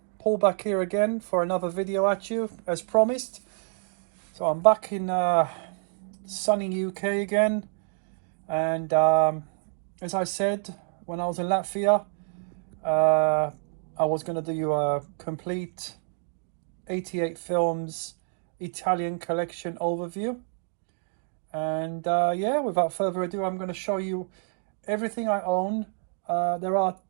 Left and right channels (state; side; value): silent; left; digital silence